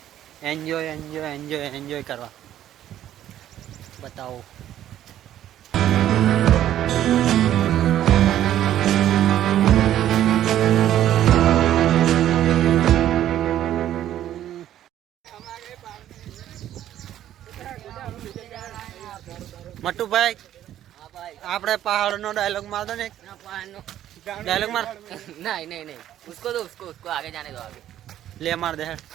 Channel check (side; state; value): left; quieter; 11.9 dB